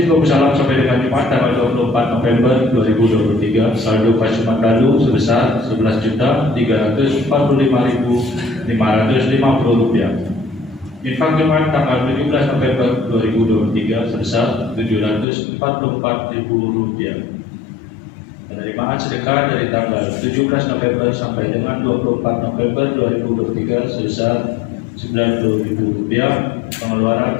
Babu Salam sampai dengan Jumat tanggal 24 November 2023 saldo kas Jumat lalu sebesar Rp11.345.550. Infak Jumat tanggal 17 November 2023 sebesar Rp744.000. Penerimaan sedekah dari tanggal 17 November sampai dengan 24 November 2023 sebesar Rp90.000.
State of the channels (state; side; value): drops out; right; at 15.2 s